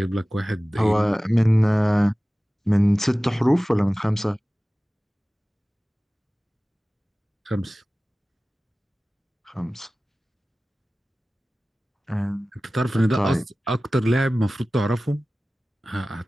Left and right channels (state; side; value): normal; both; correlation 0.97